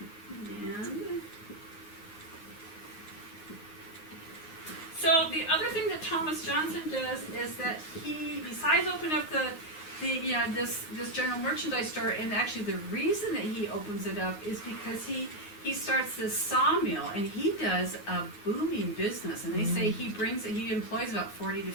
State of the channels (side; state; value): right; late; 9.6 ms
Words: And so the other thing that Thomas Johnson does is that he, besides opening up this general merchandise store, and actually the reason that he opens it up is because he starts this sawmill, and he does a booming business, and they say he employs about 40 to